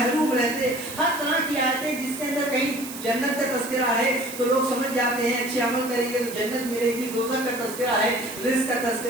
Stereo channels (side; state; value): right; noise; hiss, 12 dB below the sound